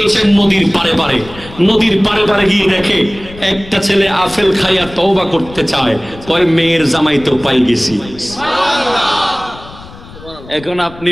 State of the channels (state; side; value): noise; left; rumble, 18 dB below the sound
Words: নদীর পারে পারে। নদীর পারে পারে গিয়ে দেখে একটা ছেলে আপেল খাইয়া তওবা করতে চায়, কয় মেয়ের জামাই তো পাই গেছি। এখন আপনি